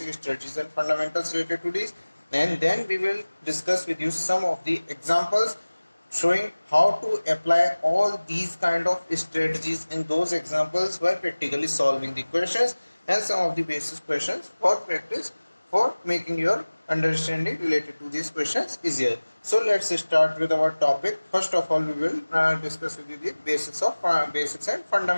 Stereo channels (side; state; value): both; inverted; correlation -1.00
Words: strategies and fundamentals related to these, and then we will discuss with you some of the examples showing how to apply all these kind of strategies in those examples while practically solving the questions and some of the basic questions for practice for making your understanding related to these questions easier. So let's start with our topic. First of all, we will discuss with you the basics and